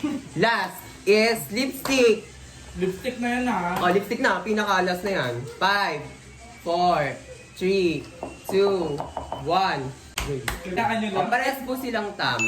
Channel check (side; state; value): both; identical; correlation 1.00